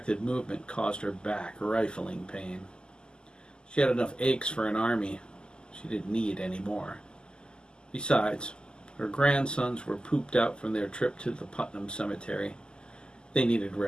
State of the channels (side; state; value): right; late; 0.047 ms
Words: movement caused her back rifling pain. She had enough aches for an army. She didn't need any more. Besides, her grandsons were pooped out from their trip to the Putnam Cemetery. They needed